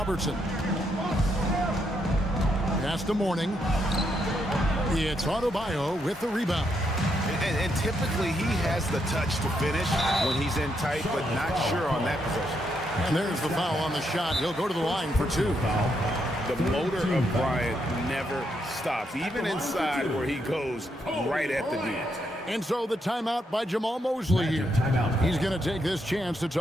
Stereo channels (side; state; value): both; normal; correlation 0.78